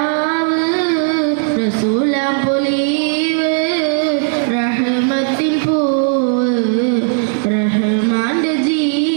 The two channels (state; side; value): silent; left; 57 dB below the other